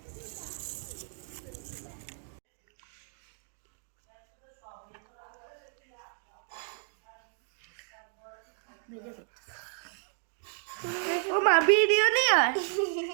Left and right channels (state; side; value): silent; left; 56 dB below the other